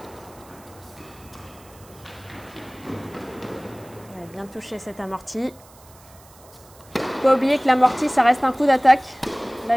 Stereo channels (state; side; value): noise; right; hiss, 25 dB below the sound